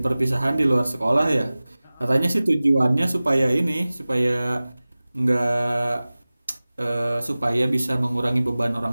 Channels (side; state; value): both; inverted; correlation -0.98